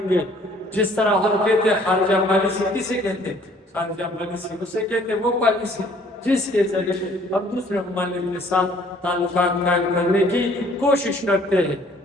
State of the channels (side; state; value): both; normal; correlation 0.58